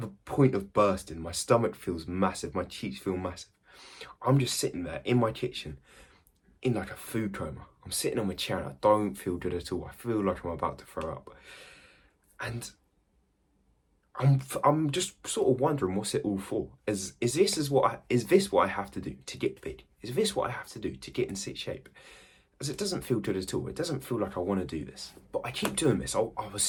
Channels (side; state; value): both; identical; correlation 1.00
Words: the point of bursting. My stomach feels massive. My cheeks feel massive. I'm just sitting there in my kitchen in like a food coma. I'm sitting on my chair and I don't feel good at all. I feel like I'm about to throw up. And I'm just sort of wondering what's it all for? Is this what I have to do to get big? Is this what I have to do to get in sick shape? As it doesn't feel good at all. It doesn't feel like I want to do this. But I keep doing this. I was